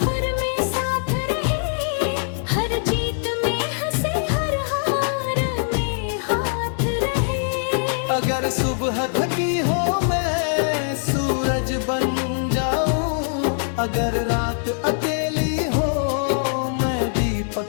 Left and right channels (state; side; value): silent; right; digital silence